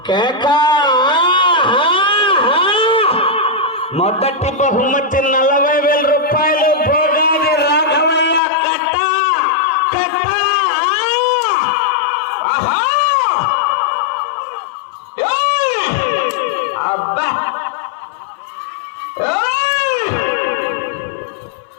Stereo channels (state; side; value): drops out; right; at 8.4 s